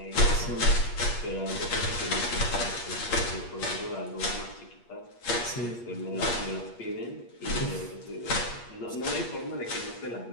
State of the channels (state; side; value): late; right; 8.4 ms